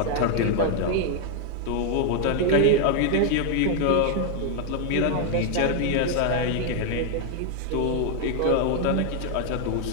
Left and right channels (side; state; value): both; different; correlation 0.00